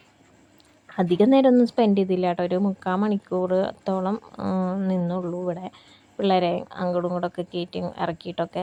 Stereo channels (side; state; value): both; identical; correlation 1.00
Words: അധികം നേരമൊന്നും സ്പെൻഡ് ചെയ്തില്ല കേട്ടോ, ഒരു 3/4 മണിക്കൂറത്തോളം നിന്നുള്ളൂ ഇവിടെ, പിള്ളേരെ അങ്ങോട്ടും ഇങ്ങോട്ടൊക്കെ കയറ്റി